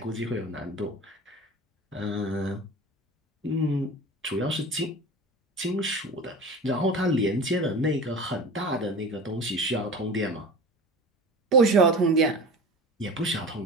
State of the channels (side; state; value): both; normal; correlation 0.34